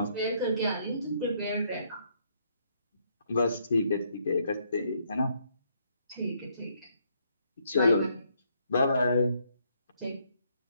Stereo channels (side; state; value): both; inverted; correlation -0.71